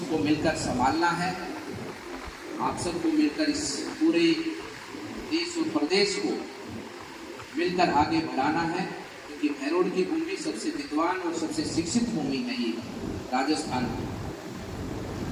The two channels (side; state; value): both; identical; correlation 1.00